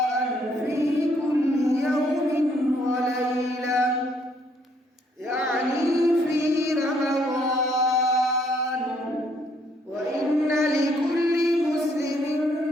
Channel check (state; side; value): normal; both; correlation 0.68